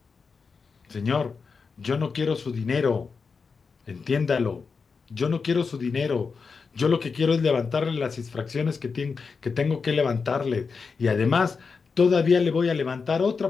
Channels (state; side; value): quieter; right; 5.1 dB